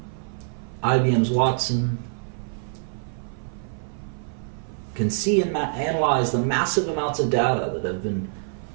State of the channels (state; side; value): silent; left; 56 dB below the other